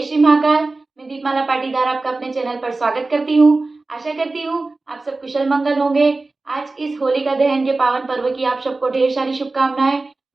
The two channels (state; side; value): quieter; left; 3.4 dB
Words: श्री महाकाल। मैं दीपमाला पाटीदार आपका अपने चैनल पर स्वागत करती हूँ। आशा करती हूँ आप सब कुशल मंगल होंगे। आज इस होलिका दहन के पावन पर्व की आप सबको ढेर सारी शुभकामनाएं।